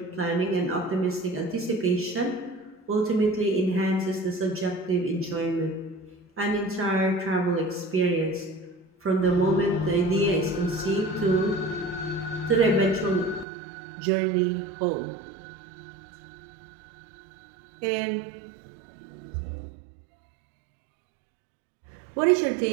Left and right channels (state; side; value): drops out; left; at 13.5 s